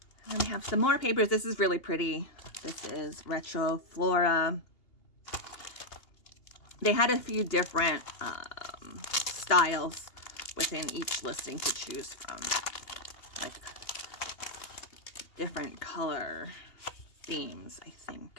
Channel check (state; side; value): late; right; 2.8 ms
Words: And then we have some more papers. This is really pretty. This is Retro Flora. They had a few different styles within each listing to choose from. Like different color themes, I